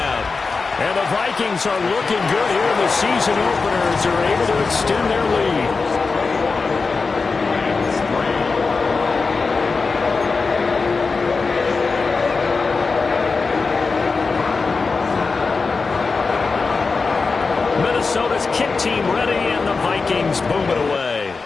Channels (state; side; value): quieter; right; 4.4 dB